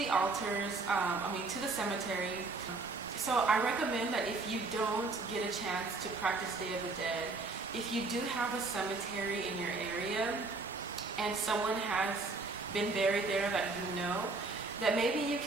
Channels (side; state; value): left; quieter; 3.6 dB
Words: altars, to the cemetery. So I recommend that if you don't get a chance to practice Day of the Dead, if you do have a cemetery in your area and someone has been buried there that you know, that maybe you